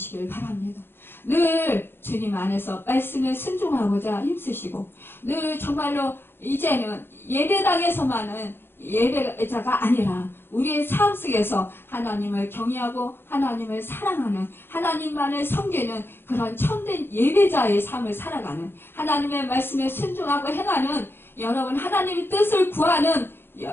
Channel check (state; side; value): late; right; 0.10 ms